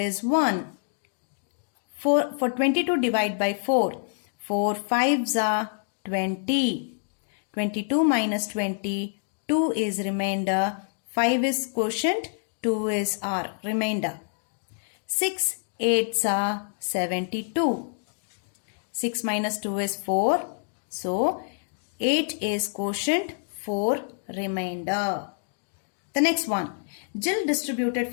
1. For 22 divided by 4. 4 5s are 20. 22 minus 20, 2 is remainder. 5 is quotient. 2 is our remainder. 6 8s are 72. 6 minus 2 is 4. So 8 is quotient, 4 remainder. The next one. Jill distributed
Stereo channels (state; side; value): silent; right; digital silence